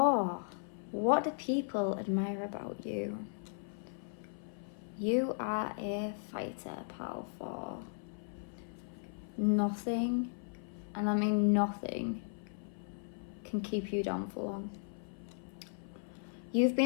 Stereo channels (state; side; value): silent; right; 53 dB below the other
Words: What do people admire about you? You are a fighter, pile 4. Nothing, and I mean nothing, can keep you down for long. You've